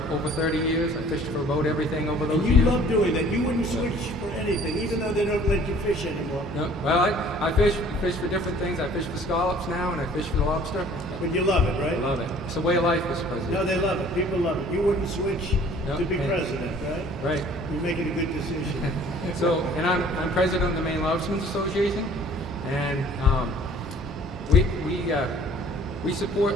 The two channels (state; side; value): normal; both; correlation 0.52